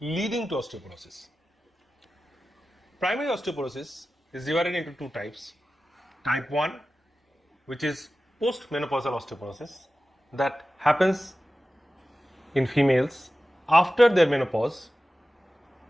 to osteoporosis. Primary osteoporosis is divided into two types. Type 1, which is postmenopausal osteoporosis, that happens in females after their menopause.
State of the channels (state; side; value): normal; both; correlation 0.94